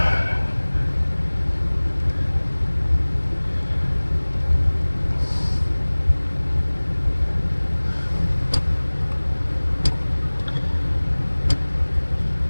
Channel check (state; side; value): inverted; both; correlation -1.00